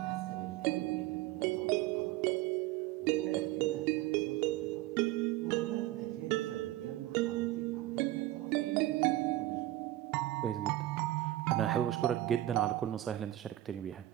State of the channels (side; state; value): left; quieter; 15.4 dB